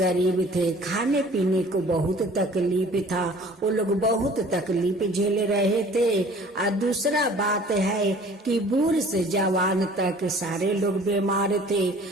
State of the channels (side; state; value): both; normal; correlation 0.50